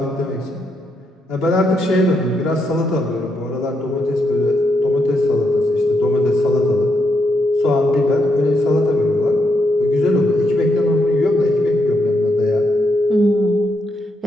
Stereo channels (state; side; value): normal; both; correlation 0.79